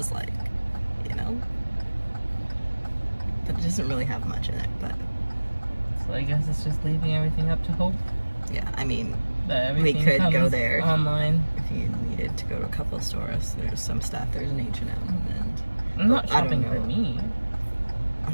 like, you know? But it doesn't really have much in it, but So I guess it's just leaving everything up to hope. yeah, I mean, That we everything could go comes there online. if you needed to go to a couple of stores. There's some stuff. There's an H&M and I'm not I don't shopping for know. me. oh,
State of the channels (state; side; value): inverted; both; correlation -1.00